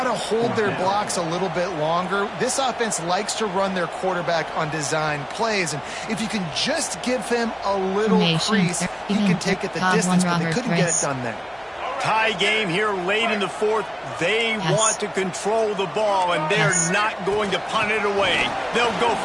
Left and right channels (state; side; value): identical; both; correlation 1.00